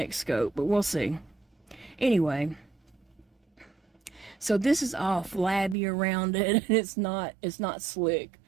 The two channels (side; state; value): left; drops out; at 5.8 s